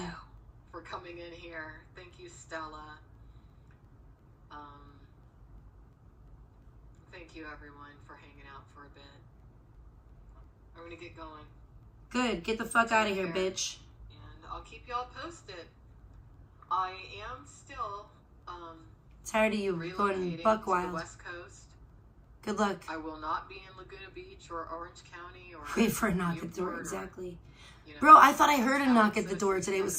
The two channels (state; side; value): identical; both; correlation 1.00